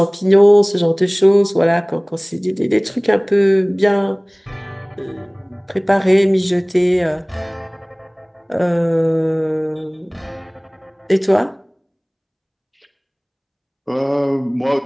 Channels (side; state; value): both; identical; correlation 1.00